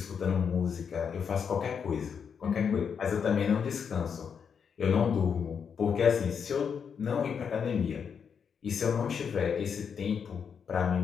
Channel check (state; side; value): quieter; right; 6.8 dB